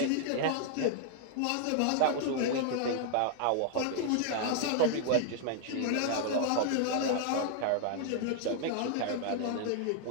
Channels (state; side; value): different; both; correlation 0.00